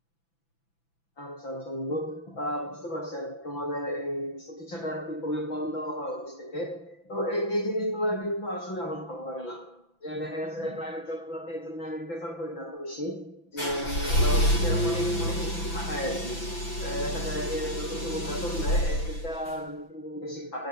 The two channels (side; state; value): right; late; 6.0 ms